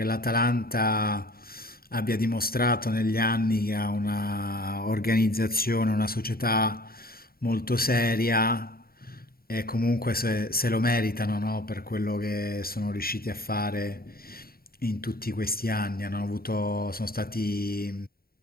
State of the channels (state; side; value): late; right; 0.43 ms